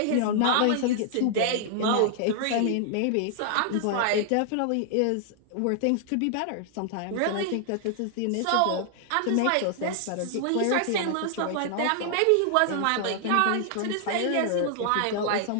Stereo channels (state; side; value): different; both; correlation 0.00